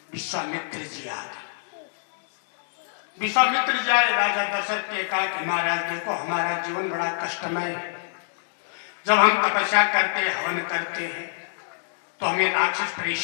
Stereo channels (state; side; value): silent; right; digital silence